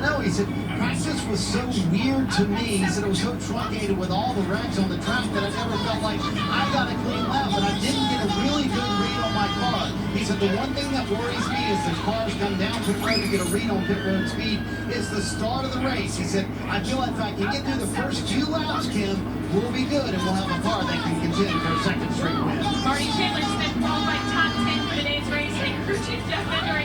know. He said, practice was so weird to me. He said, it was so truncated with all the wrecks on the track that I never felt like I got a clean lap, but I didn't get a really good read on my car. He said, the one thing that worries me is the cars come down pit road to get a read on pit road speed. It's the start of the race. He said, I feel like if I can get through the first few laps, Kim, we'll be good, and we'll have a car that can contend for a second straight win. Marty Chandler Smith qualified top 10 for today's race, and crew chief Jeff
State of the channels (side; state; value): both; identical; correlation 1.00